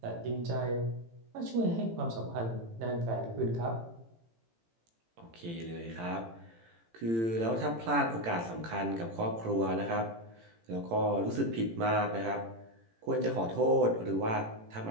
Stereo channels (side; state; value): left; late; 18 ms